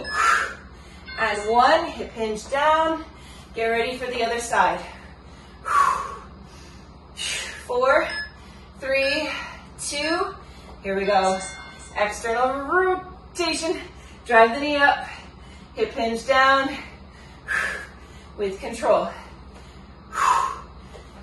and 1. Hip hinge down. Get ready for the other side. 4, 3, 2. Here we go. External rotation. Drive the knee up. Hip hinge down. With control.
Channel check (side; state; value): both; identical; correlation 1.00